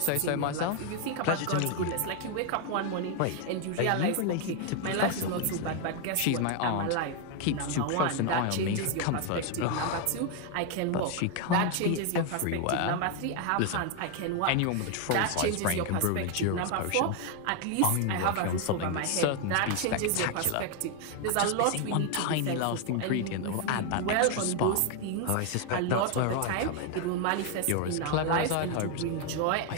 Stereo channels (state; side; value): different; both; correlation 0.01